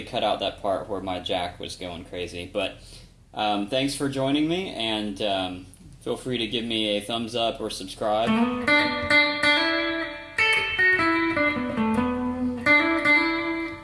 cut out that part where my jack was going crazy. But thanks for joining me, and feel free to give me a thumbs up or subscribe.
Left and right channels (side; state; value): both; identical; correlation 1.00